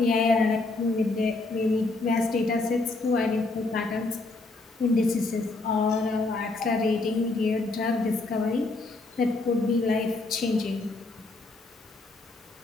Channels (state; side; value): quieter; right; 3.2 dB